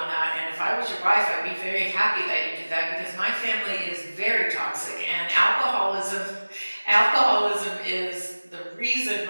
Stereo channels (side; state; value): both; inverted; correlation -1.00